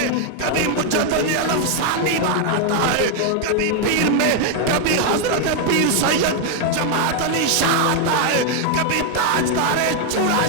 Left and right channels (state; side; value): different; both; correlation 0.01